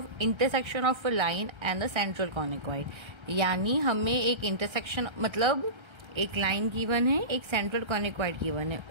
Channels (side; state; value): left; late; 1.3 ms